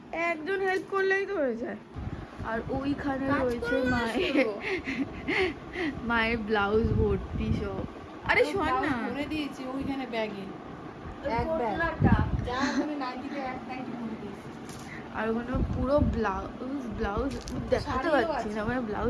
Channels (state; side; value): identical; both; correlation 1.00